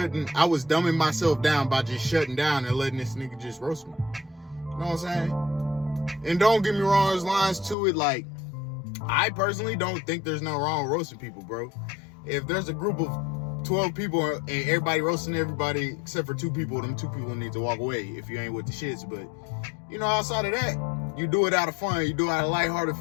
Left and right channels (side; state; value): right; drops out; at 7.8 s